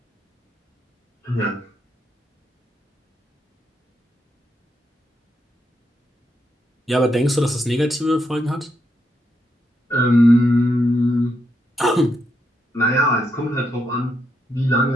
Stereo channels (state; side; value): normal; both; correlation 0.80